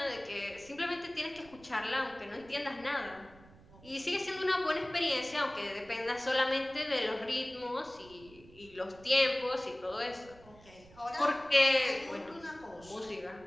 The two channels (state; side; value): noise; right; rumble, 23 dB below the sound